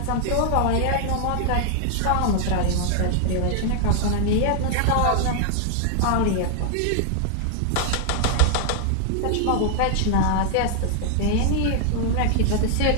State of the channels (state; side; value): different; both; correlation 0.00